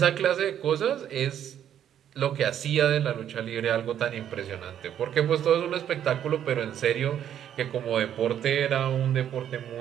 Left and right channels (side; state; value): left; quieter; 10.0 dB